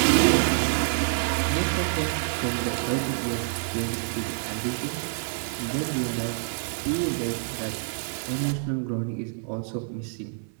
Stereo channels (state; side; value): silent; left; 59 dB below the other